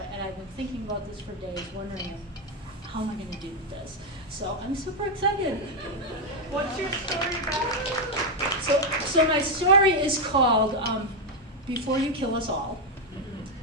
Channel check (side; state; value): both; normal; correlation 0.03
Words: And I've been thinking about this for days, wondering how am I going to do this. So I'm super excited. What's your story about? So my story is called Before You Kill Us All.